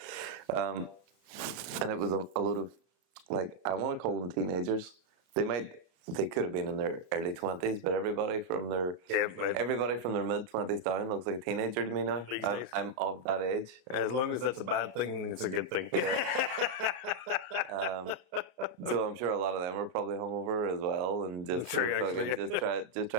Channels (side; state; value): left; late; 33 ms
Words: And it was a load of, like, I want to call them teenagers. They could have been in their early 20s, but everybody from their mid 20s down looks like a teenager to me now. These days. I'm of that age. As long as that's a bad thing, it's a good thing. So I'm sure a lot of them were probably hungover as well, and just True, fucking actually. just